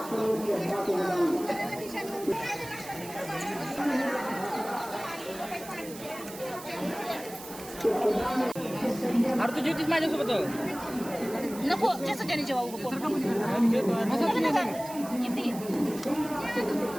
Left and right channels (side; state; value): right; noise; hiss, 15 dB below the sound